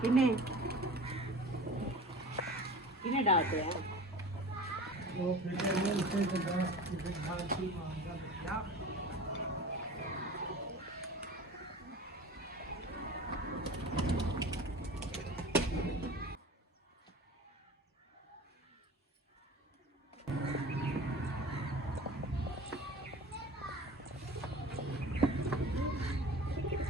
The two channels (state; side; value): normal; both; correlation 0.38